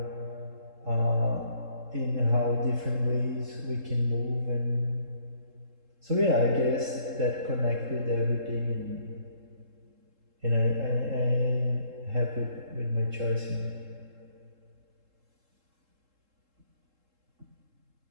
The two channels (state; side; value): late; left; 3.7 ms